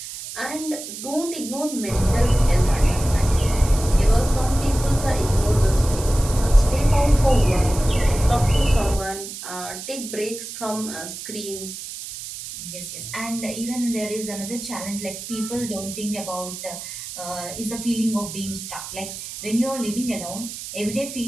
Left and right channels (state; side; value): noise; right; hiss, 10 dB below the sound